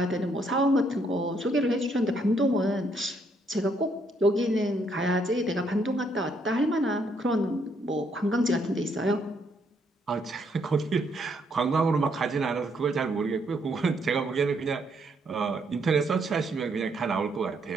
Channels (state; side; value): normal; both; correlation 0.72